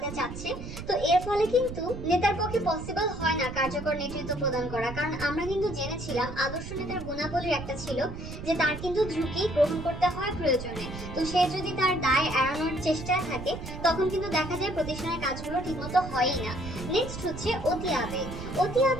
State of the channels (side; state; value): right; noise; rumble, 9 dB below the sound